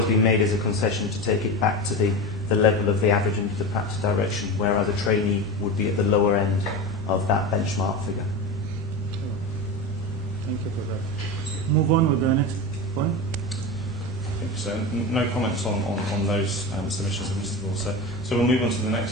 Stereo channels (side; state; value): both; normal; correlation 0.24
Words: been made is a concession to take it back to the level of the average into the practice direction, whereas a trainee would be at the lower end of that benchmark figure. Thank you for that. Move on with the next point. So no comments on those submissions of Mr. Borsa. So we'll move on to the